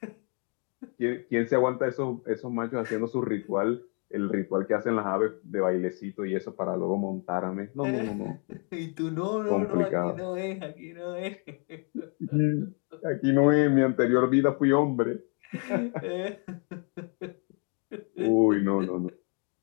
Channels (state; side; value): quieter; right; 39.0 dB